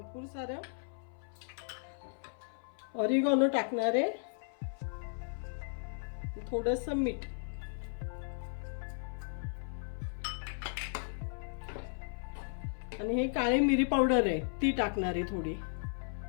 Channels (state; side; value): silent; right; 54 dB below the other